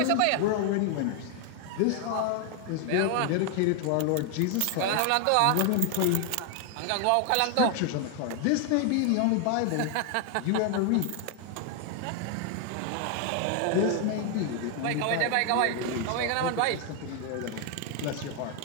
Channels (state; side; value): different; both; correlation 0.00